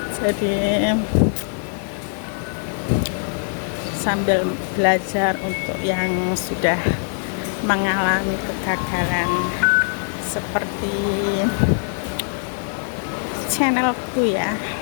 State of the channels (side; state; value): right; silent; digital silence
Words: Jadi sambil belajar untuk yang sudah mengalami kegagalan seperti channelku ya,